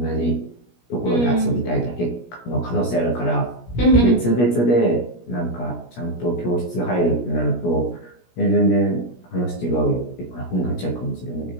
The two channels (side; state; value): right; late; 17 ms